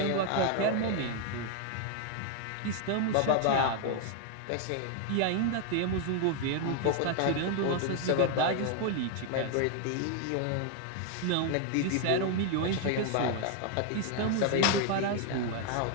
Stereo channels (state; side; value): different; both; correlation 0.00